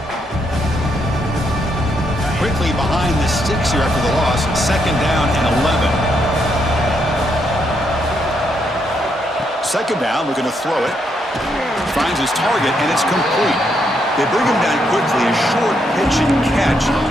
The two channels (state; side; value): normal; both; correlation 0.77